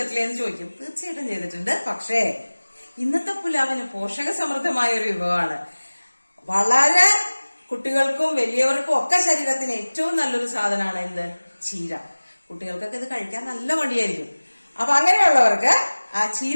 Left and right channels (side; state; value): both; inverted; correlation -1.00